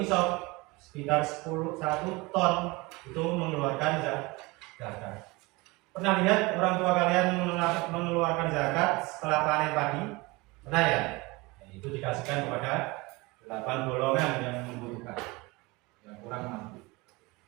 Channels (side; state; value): left; quieter; 24.0 dB